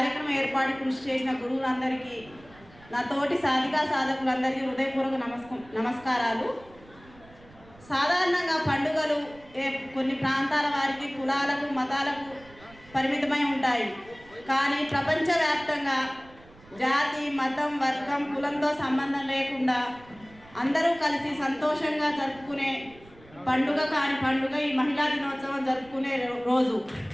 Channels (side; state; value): right; noise; rumble, 24 dB below the sound